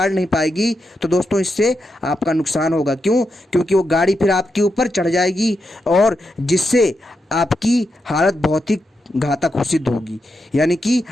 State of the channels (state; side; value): normal; both; correlation 0.85